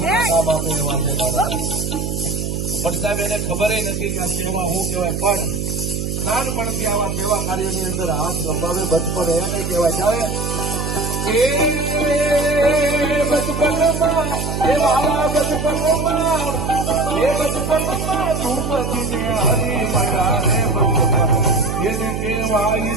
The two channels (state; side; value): noise; right; hum, 3 dB below the sound